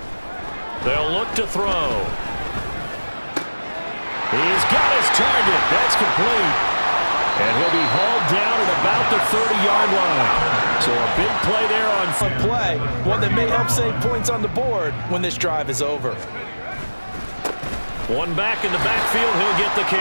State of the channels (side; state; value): both; inverted; correlation -1.00